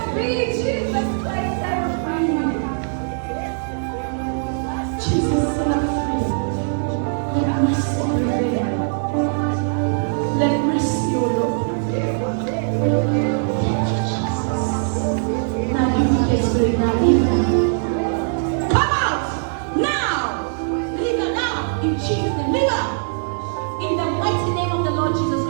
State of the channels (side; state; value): left; silent; 65 dB below the other